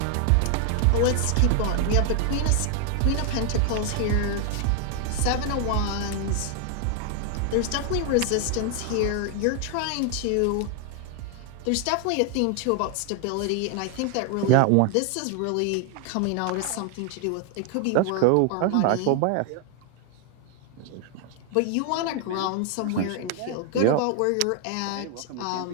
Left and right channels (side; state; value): both; different; correlation 0.00